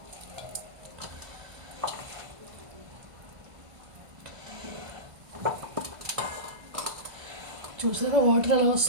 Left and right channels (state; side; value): late; left; 1.5 ms